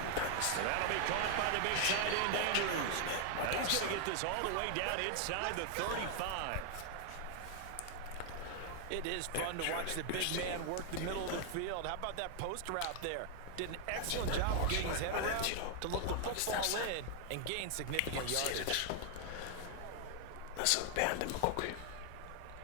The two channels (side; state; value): both; different; correlation 0.00